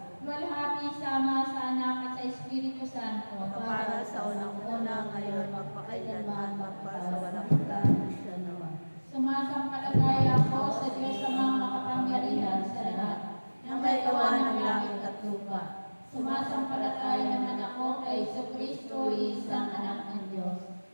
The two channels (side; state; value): both; inverted; correlation -1.00